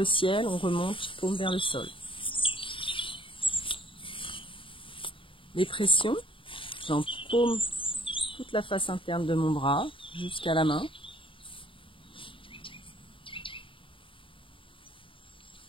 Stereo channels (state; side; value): late; right; 0.25 ms